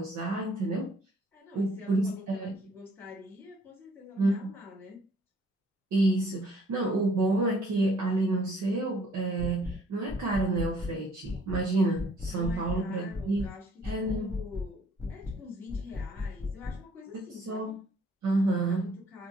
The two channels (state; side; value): normal; both; correlation 0.60